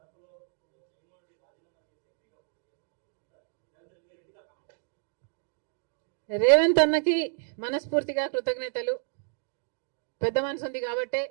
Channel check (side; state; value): left; silent; digital silence